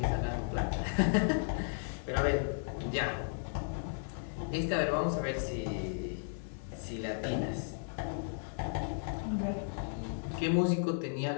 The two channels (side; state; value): right; silent; 55 dB below the other